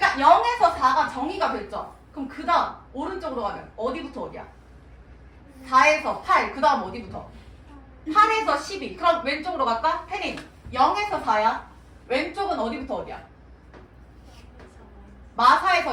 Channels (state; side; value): identical; both; correlation 1.00